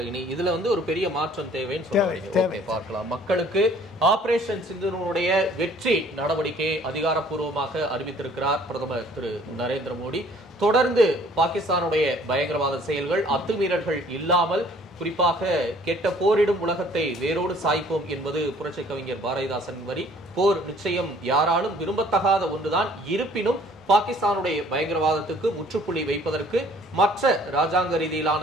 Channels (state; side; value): normal; both; correlation 0.57